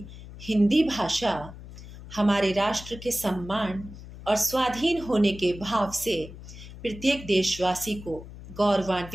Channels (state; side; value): noise; left; hum, 15 dB below the sound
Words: हिंदी भाषा हमारे राष्ट्र के सम्मान और स्वाधीन होने के भाव से प्रत्येक देशवासी को